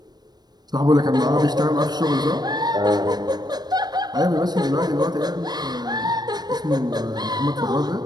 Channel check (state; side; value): late; left; 0.19 ms